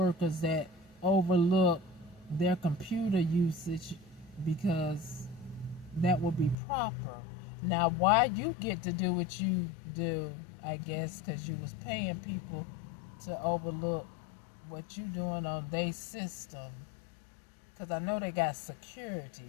that overlook their computer usage because that would be proper. Now, why you get to do what you do, I guess, because you was paying people to overlook what you doing on their system. Because I know they got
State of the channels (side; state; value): right; drops out; at 6.6 s